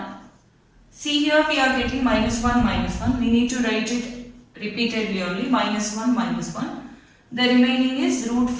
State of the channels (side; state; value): both; identical; correlation 1.00